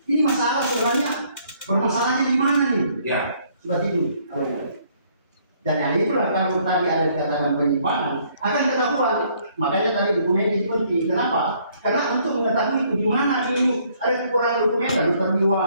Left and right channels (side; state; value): both; inverted; correlation -0.65